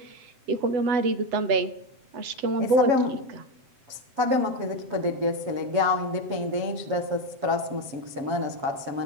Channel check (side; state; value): left; late; 7.7 ms